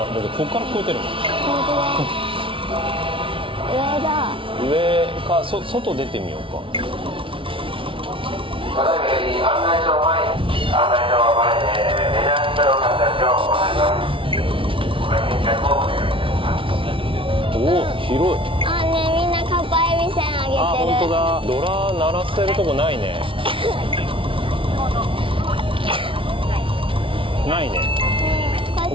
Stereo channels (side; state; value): left; late; 0.25 ms